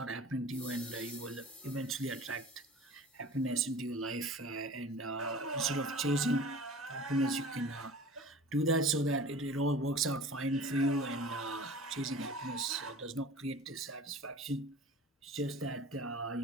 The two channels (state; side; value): normal; both; correlation 0.41